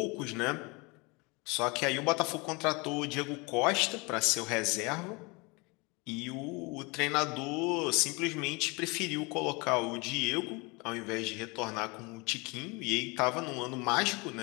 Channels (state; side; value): quieter; right; 27.6 dB